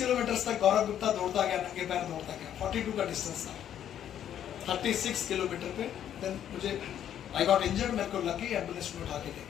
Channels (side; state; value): right; quieter; 10.2 dB